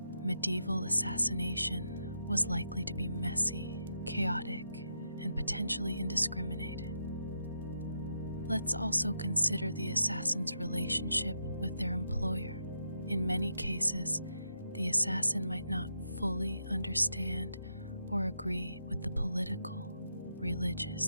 medieval assassination was likely to be messy, chaotic, and potentially indiscriminate. Let's also consider the assassin's relationship with their employer. In many cases, the assassin might not fully understand or agree with the political,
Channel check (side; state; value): both; inverted; correlation -0.83